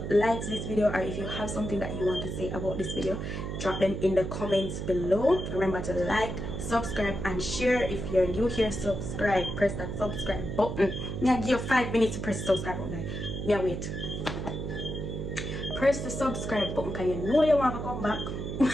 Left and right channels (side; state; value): right; noise; hum, 5 dB below the sound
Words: liked this video or if you have something that you want to say about this video, drop them in the comments below. Remember to like, subscribe and share. If you're new here, subscribe, press that subscribe button. Now give you 5 minutes to press the subscribe button. Yeah, wait, press the subscribe button because you know you want to come back.